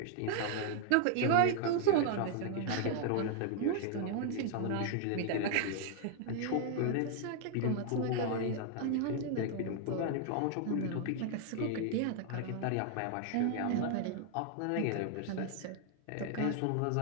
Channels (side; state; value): both; different; correlation 0.00